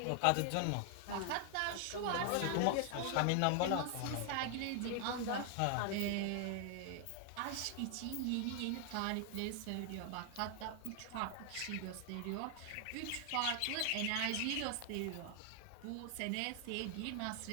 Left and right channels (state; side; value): different; both; correlation 0.00